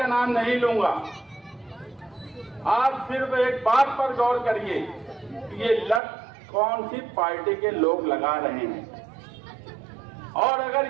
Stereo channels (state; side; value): drops out; left; at 6.0 s